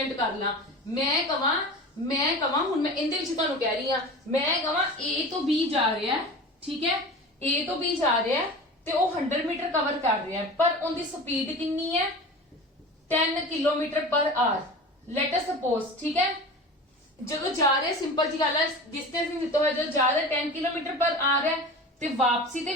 कर ला, मैं कवां हुण मैं इंदे विच तुहानू कह रही हां, मैं कवां A तो B जा रहा है, ठीक है, A तो B जा रहा है ਤੇ ਉਹ 100 ਮੀਟਰ ਕਵਰ ਕਰ ਰਿਹਾ ਹੈ, ਪਰ ਉਹਦੀ ਸਪੀਡ ਕਿੰਨੀ ਹੈ, 10 ਕਿਲੋਮੀਟਰ ਪਰ ਆਰ। ਲੈਟ ਅਸ ਸਪੋਜ਼, ਠੀਕ ਹੈ, ਜਦੋਂ ਜਾ ਰਿਹਾ, ਸਿੰਪਲ ਜੀ ਗੱਲ ਹੈ, ਡਿਸਟੈਂਸ ਨਹੀਂ ਦਿੱਤਾ ਹੋਇਆ, ਜਦੋਂ ਜਾ ਰਿਹਾ 10 ਕਿਲੋਮੀਟਰ ਪਰ ਆਰ ਹੈ ਤੇ ਵਾਪਸੀ ਤੇ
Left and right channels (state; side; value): normal; both; correlation 0.34